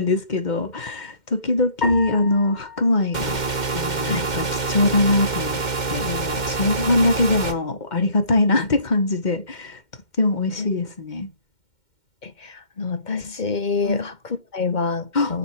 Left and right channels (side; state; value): right; late; 2.1 ms